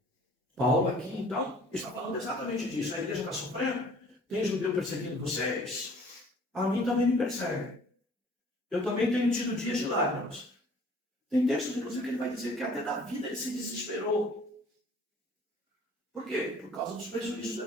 Paulo aqui, então, está falando exatamente disso. A igreja está sofrendo, tem judeu perseguindo vocês, a mim também me persegue. Eu também tenho tido dias de lágrimas. Tem textos, inclusive, que ele vai dizer que até da vida ele se desesperou. Por quê? Por causa dos prejuízos do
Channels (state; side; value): normal; both; correlation 0.53